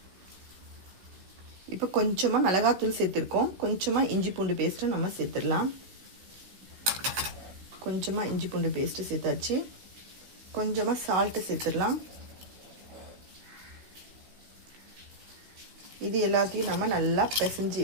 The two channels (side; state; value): left; late; 16 ms